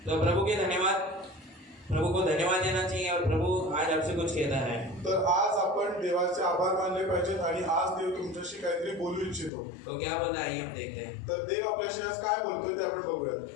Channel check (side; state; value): right; drops out; at 9.5 s